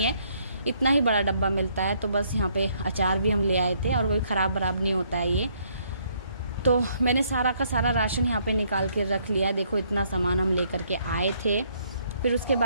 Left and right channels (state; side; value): inverted; both; correlation -0.69